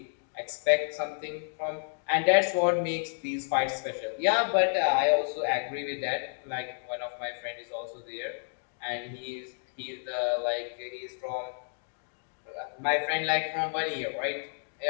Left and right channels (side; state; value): right; silent; digital silence